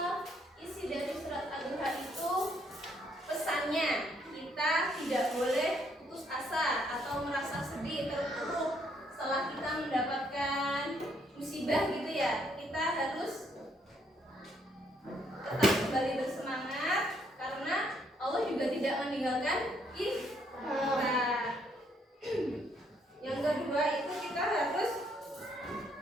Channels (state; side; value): normal; both; correlation 0.71